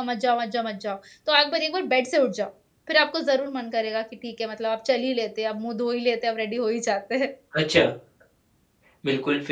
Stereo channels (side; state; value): both; identical; correlation 1.00